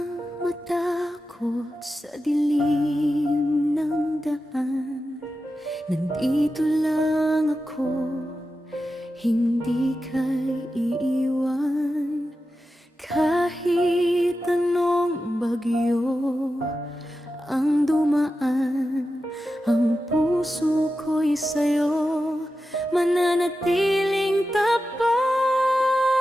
matakot sa dilim ng daan. Nandito lang ako, hindi ka iiwan. Kahit anong bagyo ang dumaan, ang puso ko'y sa'yo mananatiling tapat.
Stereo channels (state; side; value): normal; both; correlation 0.91